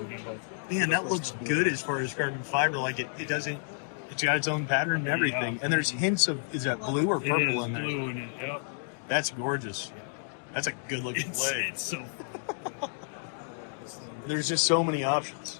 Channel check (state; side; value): silent; right; digital silence